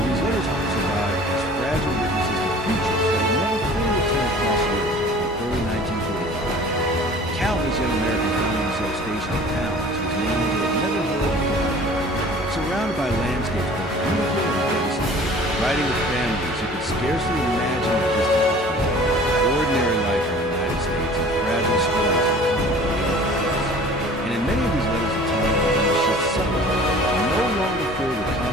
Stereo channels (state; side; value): normal; both; correlation 0.46